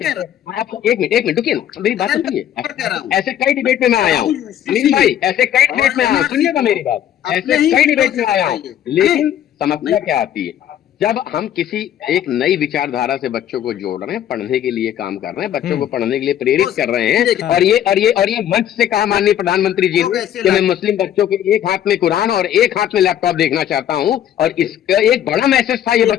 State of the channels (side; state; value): right; quieter; 10.9 dB